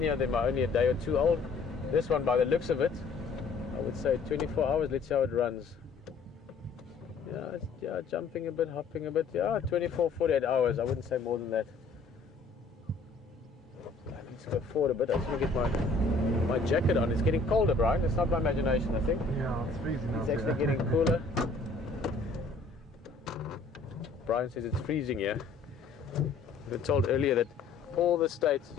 of them are only a day or two old. This one, by the looks of it, I would say 24 hours. Let's see how it runs. Yeah, jumping a bit, hopping a bit. Yeah, 24, 48 hours. I wouldn't say more than that. Let's go forward a bit. I just want to get my jacket on. It's getting colder, Brian. It's not my imagination, I think. Yeah, it's freezing out It's actually getting cooler. Brian says it's freezing here. We were told earlier that all the states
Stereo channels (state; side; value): quieter; right; 4.1 dB